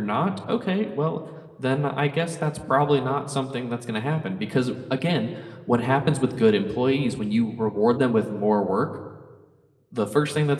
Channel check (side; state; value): both; identical; correlation 1.00